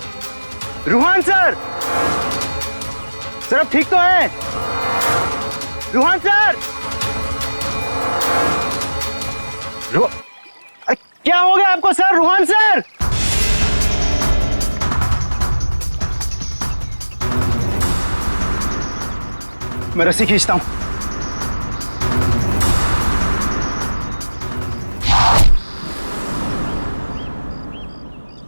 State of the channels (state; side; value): inverted; both; correlation -1.00